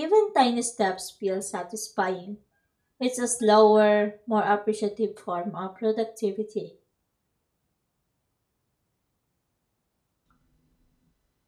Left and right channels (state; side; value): identical; both; correlation 1.00